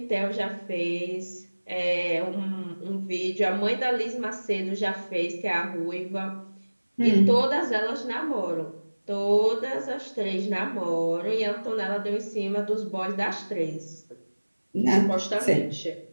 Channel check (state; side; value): inverted; both; correlation -1.00